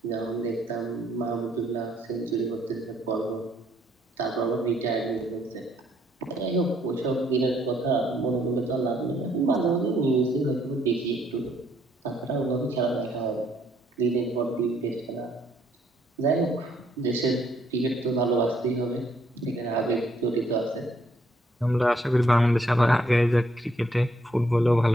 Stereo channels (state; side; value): normal; both; correlation 0.69